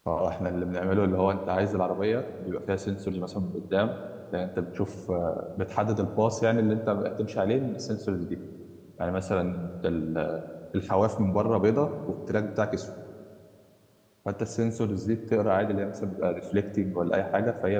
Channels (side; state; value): both; identical; correlation 1.00